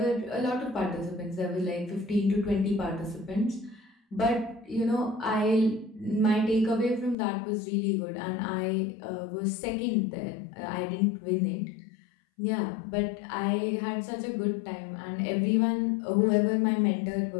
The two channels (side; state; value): right; drops out; at 7.2 s